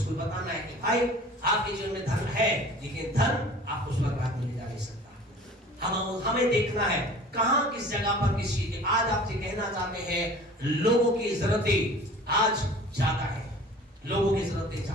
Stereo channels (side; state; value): both; normal; correlation 0.44